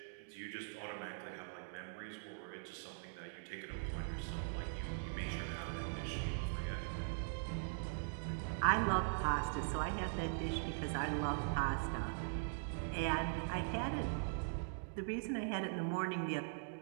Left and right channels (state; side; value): silent; left; digital silence